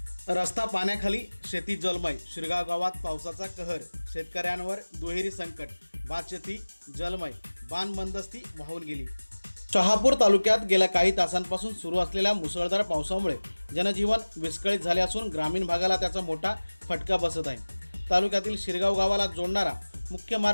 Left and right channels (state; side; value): inverted; both; correlation -1.00